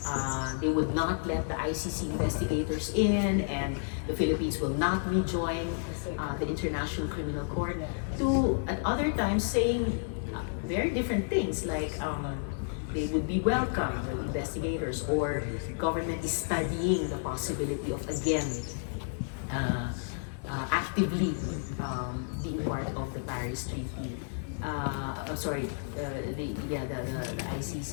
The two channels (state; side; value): silent; right; digital silence